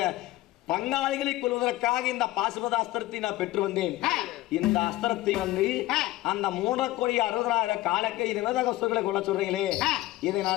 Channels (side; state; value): right; quieter; 17.0 dB